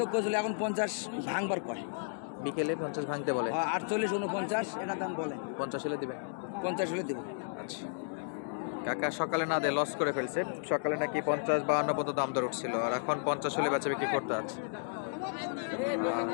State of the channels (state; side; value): silent; right; digital silence